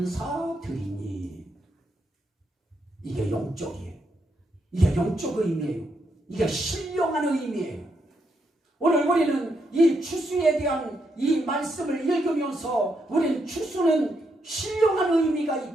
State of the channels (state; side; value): normal; both; correlation 0.79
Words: 이게 영적이에요. 이게 영적 의미예요. 이게 신령한 의미예요. 오늘 우리는 이 추수에 대한 이 말씀을 읽으면서 우리는 추수는 신령한 의미가